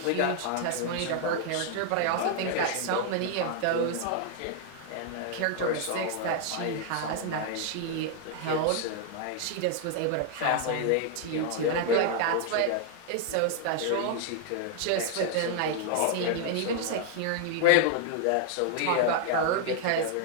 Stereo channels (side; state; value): both; different; correlation 0.00